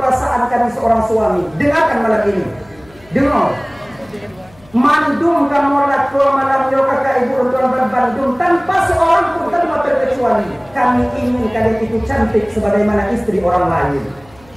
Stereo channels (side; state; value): left; noise; hum, 27 dB below the sound